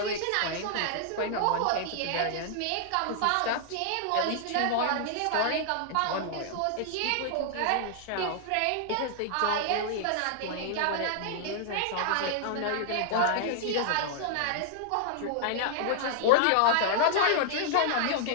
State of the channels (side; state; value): both; different; correlation -0.01